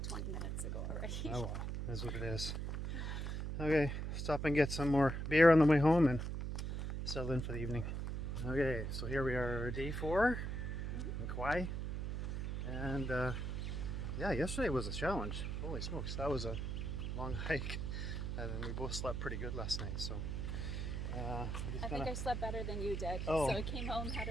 20 minutes ago already. Oh well, that's what it is. Okay, stop and get some more beer on the way home and settle in for the evening. Okay, so here we are, day 4 in Kauai. And yeah, yesterday was a challenge. Holy smokes, that was a long hike. And then we both slept pretty good last night, so I think I slept better than you did. Oh. So I came home, had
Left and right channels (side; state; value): right; noise; hum, 3 dB below the sound